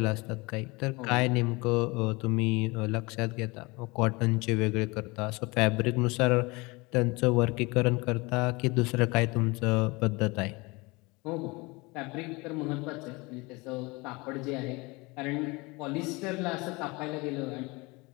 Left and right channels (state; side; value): quieter; right; 25.2 dB